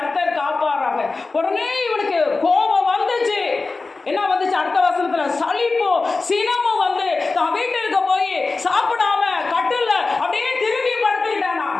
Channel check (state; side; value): quieter; right; 3.8 dB